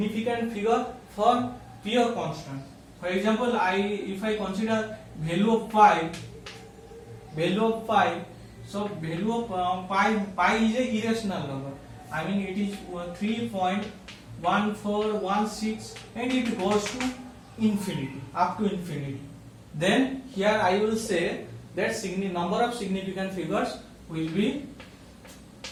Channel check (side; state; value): both; identical; correlation 1.00